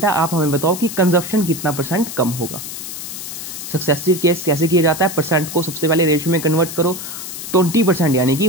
है, आप हमें बताओ कि कंजप्शन कितना परसेंट कम होगा। सक्सेसिव केस कैसे किया जाता है, परसेंट को सबसे पहले रेशियो में कन्वर्ट करो, 20% यानी कि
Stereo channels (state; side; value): noise; left; hiss, 9 dB below the sound